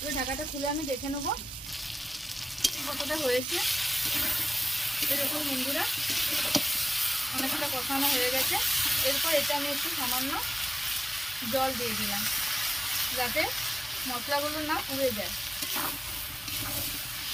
ঢাকাটা খুলে আমি দেখে নেবো কতটা হয়েছে। এরকম বন্ধুরা অনেকটা কষানো হয়ে গেছে। এরপর এটা আমি একটু সামান্য জল দিয়ে দিলাম, যাতে মশলাগুলো না পুড়ে যায়।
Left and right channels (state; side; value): normal; both; correlation 0.95